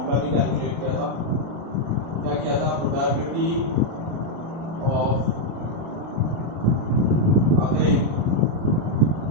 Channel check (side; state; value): left; late; 36 ms